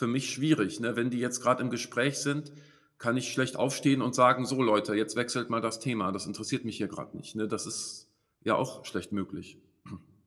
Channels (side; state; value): both; identical; correlation 1.00